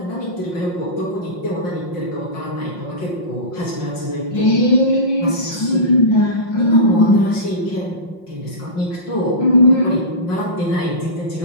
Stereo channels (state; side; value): late; right; 5.6 ms